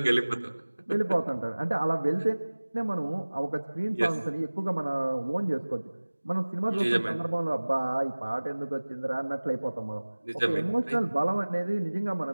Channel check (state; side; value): inverted; both; correlation -1.00